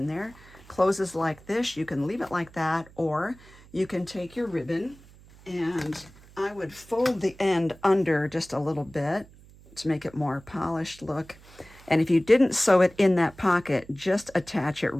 there. Closes like this. You can leave it like that, or you can take your ribbon, and I would fold the end under just a little bit to make it more polished look. And if you didn't sew it in that pocket, just attach it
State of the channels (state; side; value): noise; right; hum, 23 dB below the sound